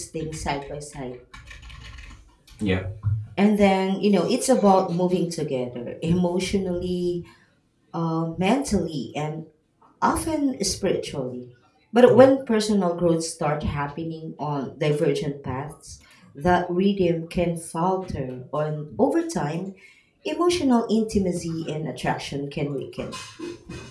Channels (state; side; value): identical; both; correlation 1.00